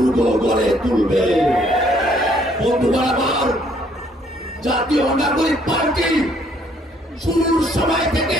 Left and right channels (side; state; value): both; normal; correlation 0.64